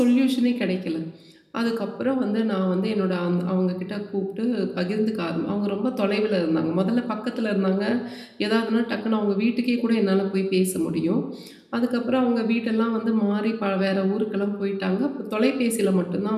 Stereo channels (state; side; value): identical; both; correlation 1.00